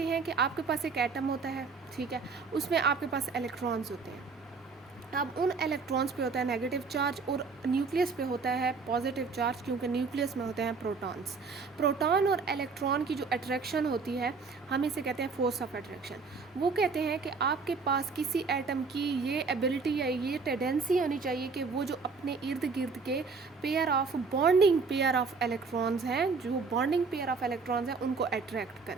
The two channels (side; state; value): left; quieter; 4.7 dB